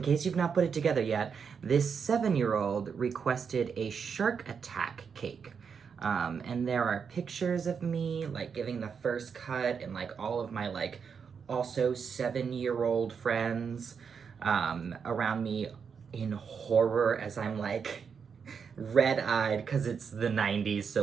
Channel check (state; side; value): quieter; left; 6.4 dB